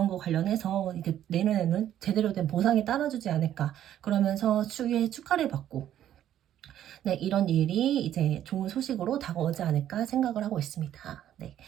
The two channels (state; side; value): quieter; left; 11.3 dB